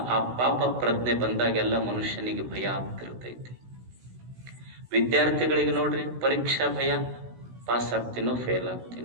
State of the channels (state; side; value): late; left; 16 ms